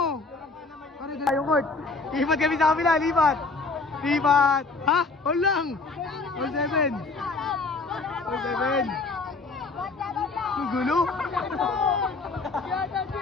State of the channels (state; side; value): quieter; right; 3.9 dB